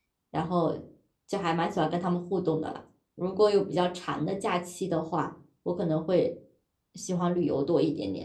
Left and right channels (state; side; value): identical; both; correlation 1.00